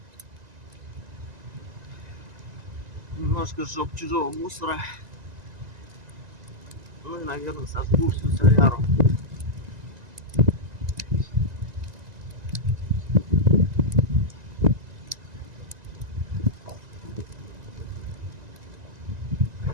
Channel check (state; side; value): late; left; 1.9 ms